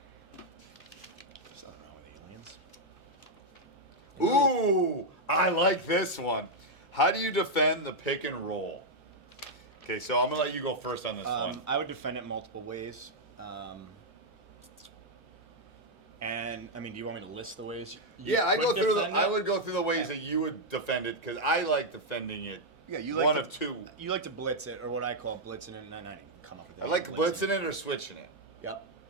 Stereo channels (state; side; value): normal; both; correlation -0.02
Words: Something wrong with aliens. Ooh, I like this one. How do you defend the pick and roll? Okay, so I'm going to let you go first on this one. I would defend it multiple ways. And, I mean, do you want me to list the ways you I would go through the ways Okay. that you would defend it because I like defending it. Yeah, you like one to, of two. You like to blitz it, or what I call blitzing it, and I didn't come up with that. I like blitzing it or switching it. Yep.